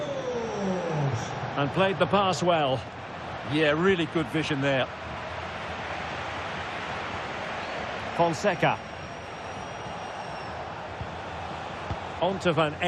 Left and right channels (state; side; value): identical; both; correlation 1.00